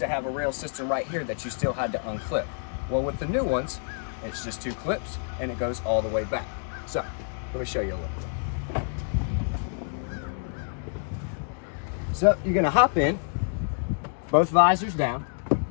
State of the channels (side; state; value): right; silent; digital silence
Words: have a rail system right here that you still had to unclip. Well, with the new ones, it's just 2 clips and it goes all the way back. So let me show you a little bit. So you're gonna hop in, both visors down,